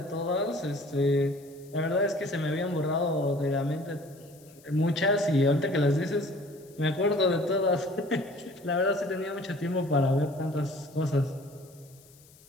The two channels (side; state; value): left; noise; hiss, 26 dB below the sound